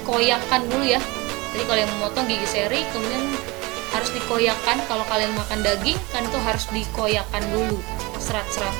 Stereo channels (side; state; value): left; quieter; 24.4 dB